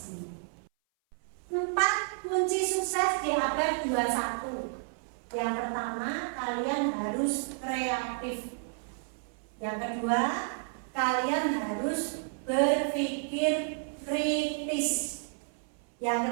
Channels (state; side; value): silent; left; 57 dB below the other